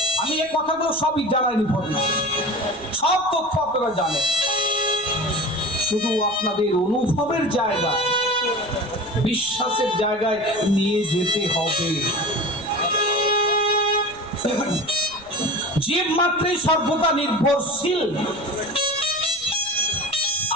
আমি এই কথাগুলো সবই জানাইনি, সব তথ্য আপনারা জানেন, শুধু আপনাদের অনুভবের জায়গায়, বিশ্বাসের জায়গায় নিয়ে যেতে হবে। জীব মাত্রই সর্বদা নির্ভরশীল,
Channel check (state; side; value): noise; right; rumble, 25 dB below the sound